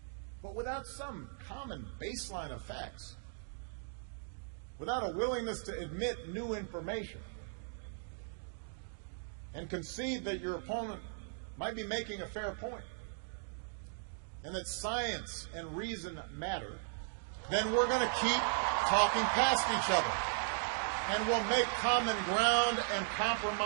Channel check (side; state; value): left; silent; digital silence